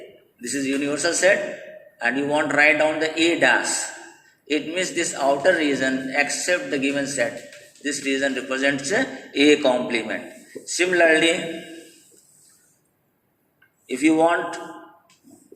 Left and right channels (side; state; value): both; identical; correlation 1.00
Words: this is universal set, and you want to write down the A dash. It means this outer region except the given set. This region represents a complement. Similarly, if you want to